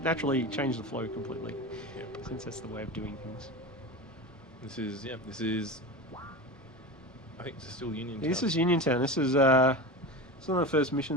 naturally changed the flow completely. Since that's the way of doing things. This is. I think this is still Uniontown. This is Uniontown. This is one of the first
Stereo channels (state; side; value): normal; both; correlation 0.27